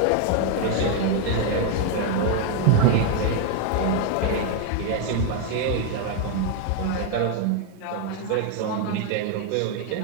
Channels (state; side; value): different; both; correlation 0.00